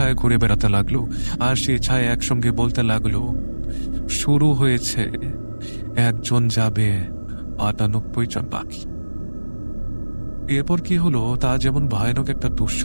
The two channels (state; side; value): inverted; both; correlation -1.00